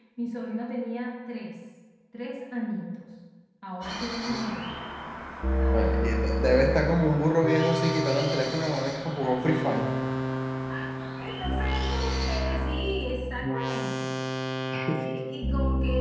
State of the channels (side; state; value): both; identical; correlation 1.00